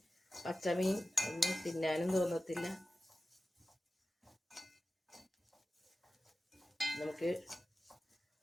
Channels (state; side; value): normal; both; correlation 0.94